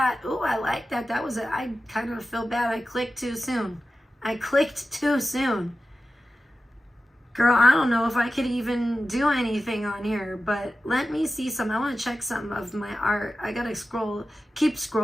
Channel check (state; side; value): normal; both; correlation 0.93